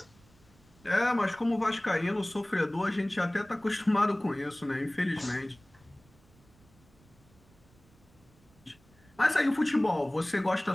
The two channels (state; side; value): noise; right; rumble, 29 dB below the sound